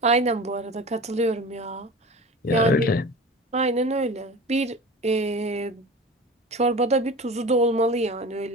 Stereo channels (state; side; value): normal; both; correlation 0.34